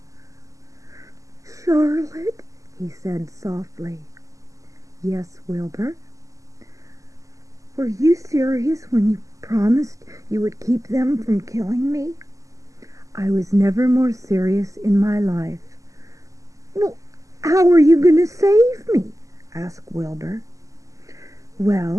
"Charlotte," he said softly. "Yes, Wilbur?" "Were you serious when you promised you would keep them from killing me? I was never more serious in my life. Well, how are you going to save me? Asked Wilbur.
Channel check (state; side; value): late; left; 0.16 ms